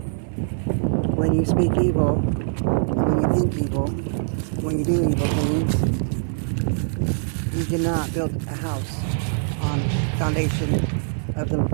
When you speak evil, when you think evil, when you do evil things, you cannot build a house on foundation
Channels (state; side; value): silent; left; 63 dB below the other